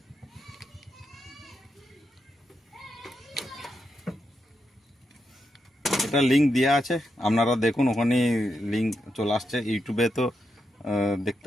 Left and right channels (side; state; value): both; normal; correlation 0.84